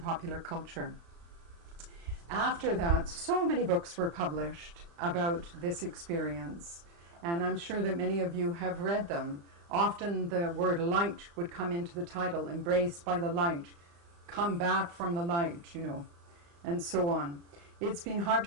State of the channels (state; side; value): late; left; 35 ms